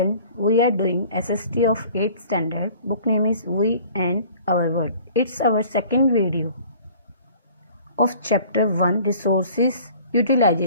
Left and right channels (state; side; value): inverted; both; correlation -0.49